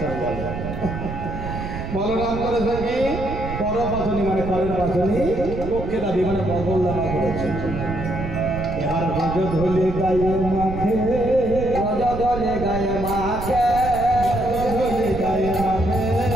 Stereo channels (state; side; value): noise; right; rumble, 7 dB below the sound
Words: বলে। বলরাম করেছে কি পর পাঁচুলি, মানে করের পাঁচুলি পক্ষে দাবি, মানে বগলদামা করেছে। এবার গজ ধলে গায়ে মাখে, গজ ধলে গায়ে মাখে, গজ ধলে গায়ে মাখে,